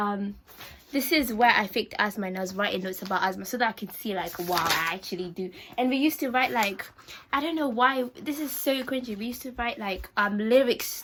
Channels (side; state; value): both; identical; correlation 1.00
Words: this is where I faked asthma, and I was writing notes about asthma so that I could see like, wow, I actually do. And we used to write like, I don't know why, this is so cringy. We used to write like lyrics